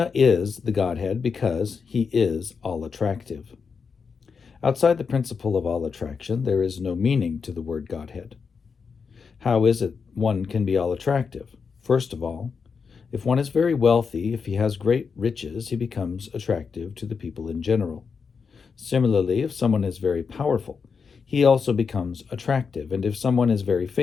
is the Godhead because he is all-attractive. Outside the principle of all attraction, there is no meaning to the word Godhead. How is it one can be all-attractive? First of all, if one is very wealthy, if he has great riches, he becomes attractive to the people in general. Similarly, if someone is very powerful, he also becomes attractive. And if someone is very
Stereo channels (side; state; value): right; quieter; 5.6 dB